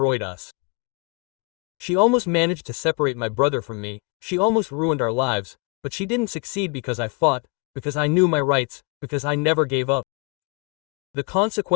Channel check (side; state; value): right; quieter; 33.1 dB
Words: us. She almost managed to separate my brother from me, she almost ruined our lives, but she didn't succeed because I fought, because I knew my rights, because I never gave up. The